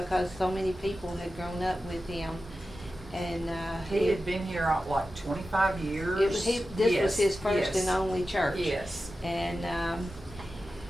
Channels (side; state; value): both; normal; correlation 0.93